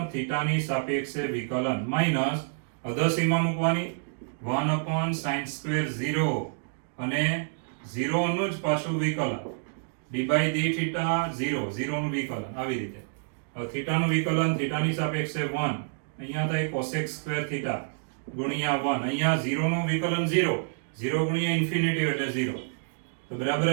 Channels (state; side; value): silent; left; digital silence